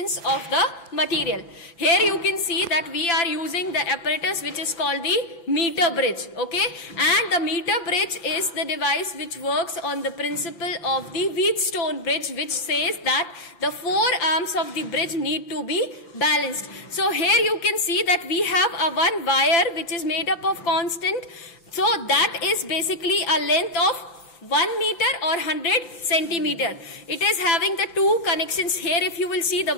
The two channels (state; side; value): late; right; 5.9 ms